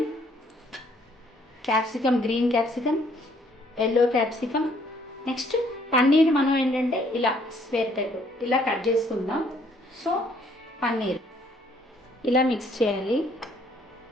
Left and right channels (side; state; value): both; normal; correlation 0.64